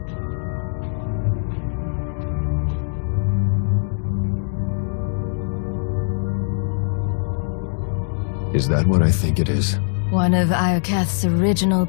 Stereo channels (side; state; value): right; silent; 64 dB below the other